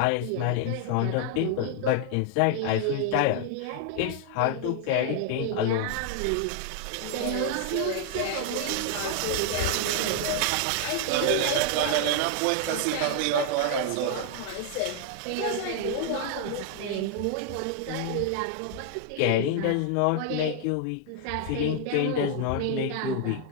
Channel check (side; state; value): both; different; correlation 0.00